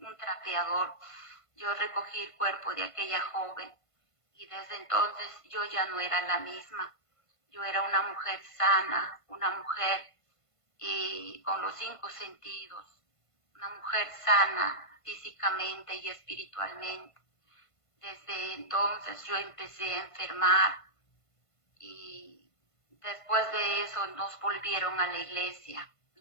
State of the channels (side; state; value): right; late; 1.5 ms